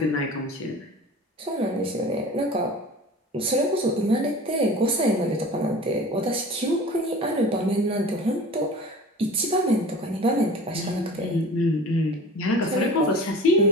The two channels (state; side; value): normal; both; correlation 0.40